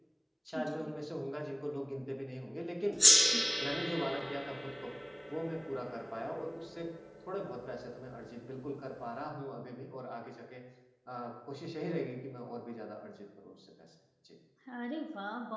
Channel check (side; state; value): both; identical; correlation 1.00